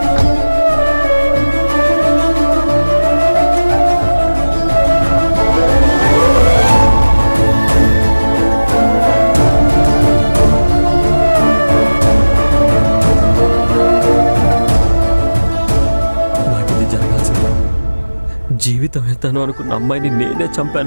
జీవితం ఎత్తాను అనుకున్న అమ్మాయిని నేనే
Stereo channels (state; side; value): inverted; both; correlation -1.00